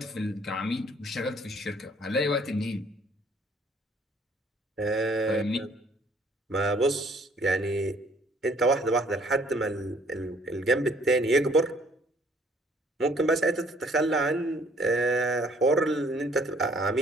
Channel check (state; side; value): normal; both; correlation 0.60